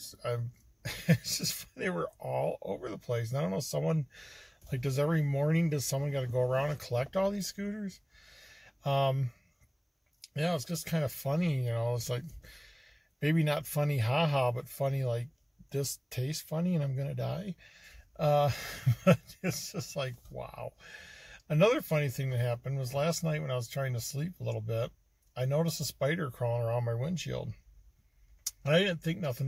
It's just, they were all over the place. And I don't know, someone, like, does someone got to go around and collect all these scooters? Yeah, it's just kind of funny, you know. It's like, maybe not funny haha, but funny like, this tastes funny and I'm gonna die. But it's just like, wow. Another funny thing that happened was last night when I was trying to sleep a little bit, I noticed a spider crawling around my windshield. And I didn't think nothing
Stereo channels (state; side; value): identical; both; correlation 1.00